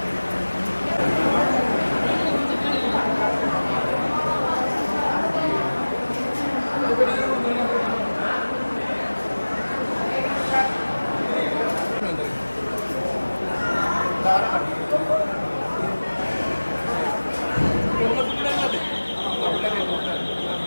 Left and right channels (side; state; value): both; inverted; correlation -1.00